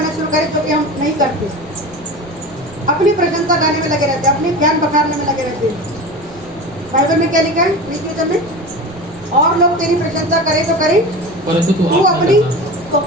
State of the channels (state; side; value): noise; right; rumble, 22 dB below the sound